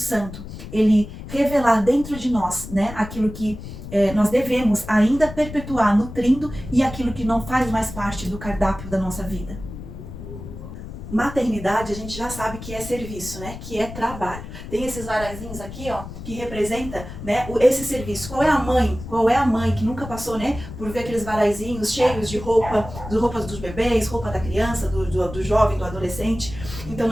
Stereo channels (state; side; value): noise; left; rumble, 11 dB below the sound